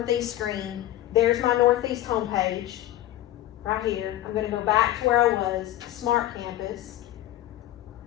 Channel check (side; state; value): right; quieter; 14.3 dB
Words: screen. There's my Northeast homepage right here. I'm gonna go back to where I was, Smart Campus,